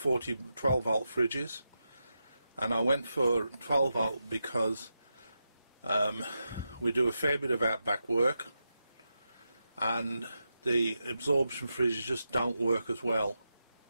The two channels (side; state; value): both; inverted; correlation -0.88